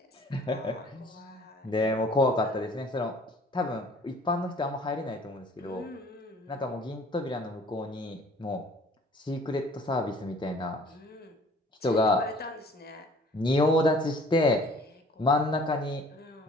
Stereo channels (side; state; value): both; normal; correlation 0.53